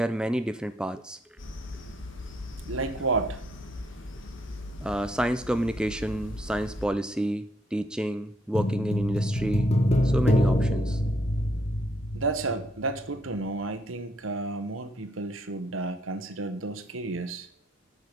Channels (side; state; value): both; normal; correlation 0.71